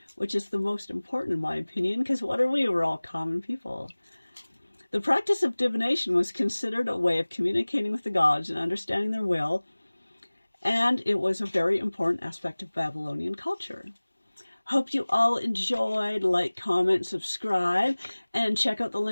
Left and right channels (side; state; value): both; inverted; correlation -1.00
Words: which is the most important in my opinion, because what are we? We're all common people. The practice of divination was considered a way of communicating with the gods and understanding their will, and it was a very important aspect of Babylonian culture. Hope you all enjoyed. Like, comment, subscribe, and check out the